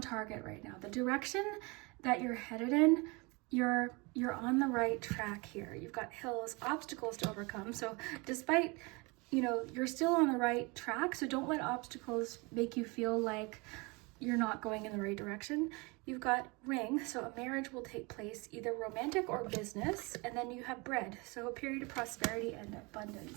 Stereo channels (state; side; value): quieter; left; 27.5 dB